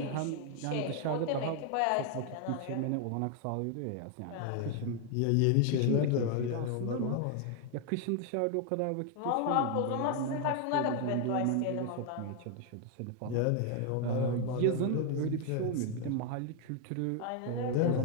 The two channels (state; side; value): different; both; correlation 0.00